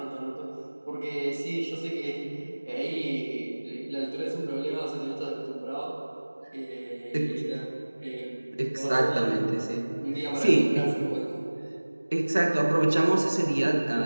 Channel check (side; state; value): both; inverted; correlation -1.00